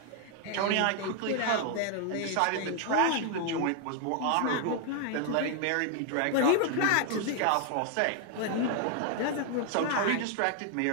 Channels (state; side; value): different; both; correlation 0.00